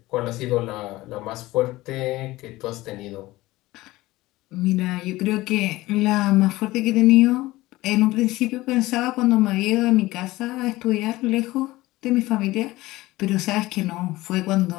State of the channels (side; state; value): right; quieter; 18.5 dB